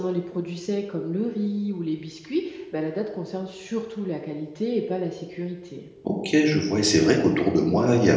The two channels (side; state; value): both; identical; correlation 1.00